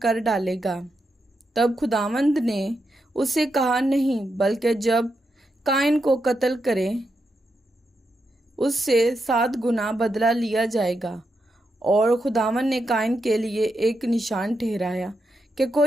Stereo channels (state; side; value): normal; both; correlation 0.85